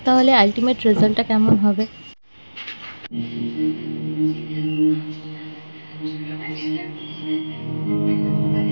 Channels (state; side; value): inverted; both; correlation -1.00